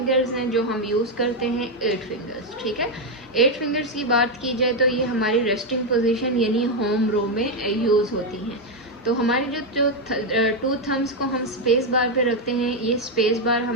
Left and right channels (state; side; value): normal; both; correlation 0.04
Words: हैं जो हम यूज़ करते हैं 8 फिंगर्स, ठीक है। 8 फिंगर्स की बात की जाए तो ये हमारी रेस्टिंग पोजीशन यानी होम रो में यूज़ होती हैं। तो हमारी जो 2 थम्स को हम स्पेस बार पे रखते हैं, ये स्पेस बार